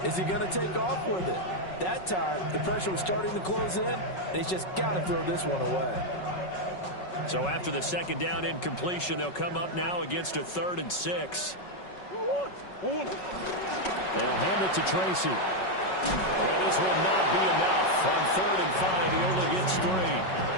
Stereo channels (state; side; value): late; right; 5.4 ms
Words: he going to take off with it? That time, the pressure was starting to close in, and he's just got to throw this one away. So after the 2nd down incompletion, they'll come up now against a 3rd and 6. They'll hand it to Tracy. And this will not be enough. On 3rd and 5, he only gets 3.